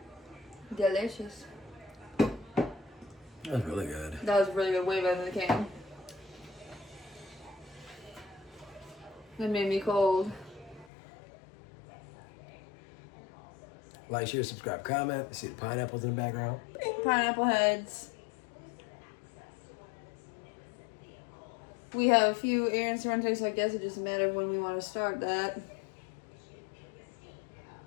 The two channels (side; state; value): right; drops out; at 10.9 s